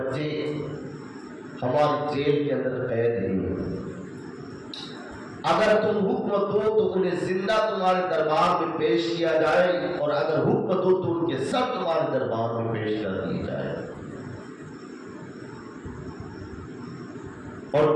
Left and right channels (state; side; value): identical; both; correlation 1.00